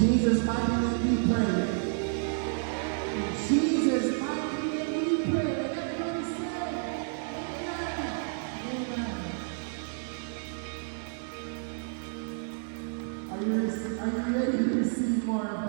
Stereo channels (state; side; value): silent; left; digital silence